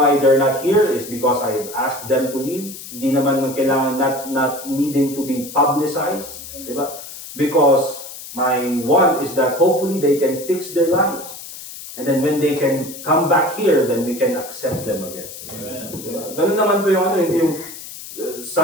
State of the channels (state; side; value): noise; left; hiss, 13 dB below the sound